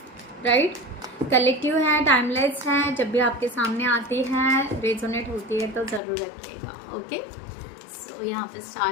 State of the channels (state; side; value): drops out; right; at 6.0 s